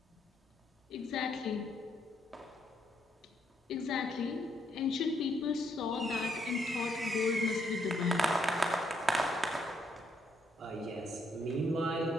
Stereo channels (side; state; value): both; normal; correlation 0.73